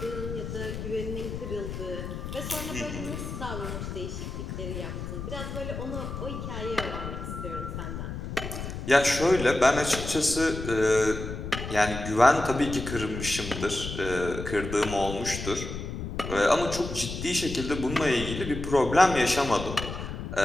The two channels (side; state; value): left; noise; rumble, 7 dB below the sound